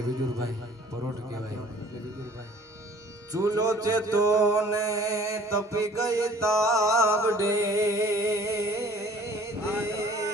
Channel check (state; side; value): normal; both; correlation 0.52